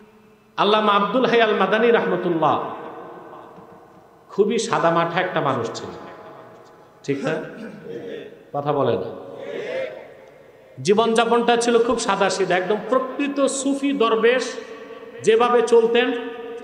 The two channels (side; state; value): both; identical; correlation 1.00